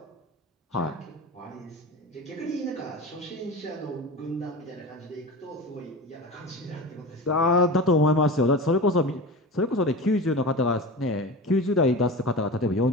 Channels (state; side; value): normal; both; correlation 0.30